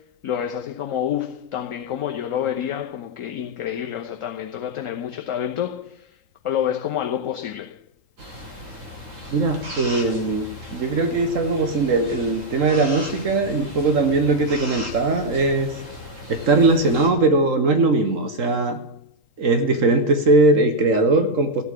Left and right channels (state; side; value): late; left; 3.8 ms